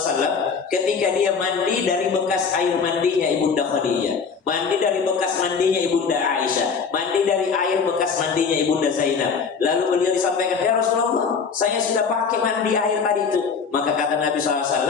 ketika dia mandi dari bekas air mandinya Ibunda Khadijah, mandi dari bekas mandinya Ibunda Aisyah, mandi dari air bekas mandinya Ibunda Zainab. Lalu beliau disampaikan, ya Rasulullah, saya sudah pakai mandi air tadi itu. Maka kata Nabi SAW,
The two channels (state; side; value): quieter; right; 5.7 dB